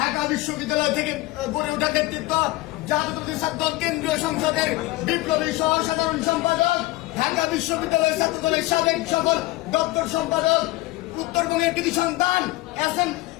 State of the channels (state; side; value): quieter; right; 19.3 dB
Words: বিশ্ববিদ্যালয় থেকে গড়ে ওঠা নেতৃত্ব জাতীয় ছাত্র কেন্দ্রীয় সংসদের বিপ্লবী সহ সাধারণ সম্পাদক ঢাকা বিশ্ববিদ্যালয় ছাত্র দলের সাবেক সকল দপ্তর সম্পাদক উত্তরবঙ্গের কৃতি সন্তান